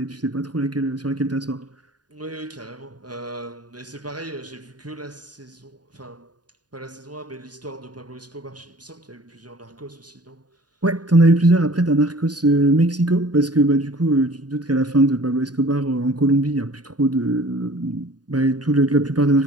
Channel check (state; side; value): late; left; 0.69 ms